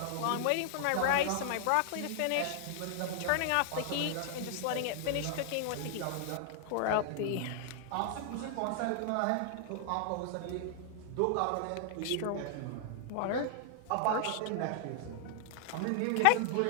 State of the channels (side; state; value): both; different; correlation 0.00